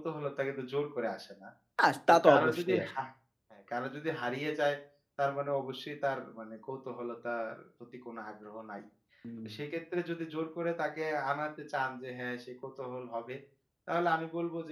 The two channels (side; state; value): both; identical; correlation 1.00